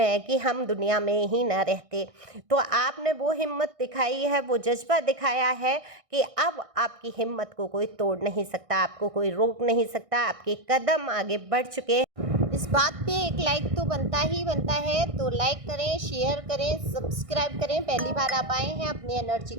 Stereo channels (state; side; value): late; left; 1.6 ms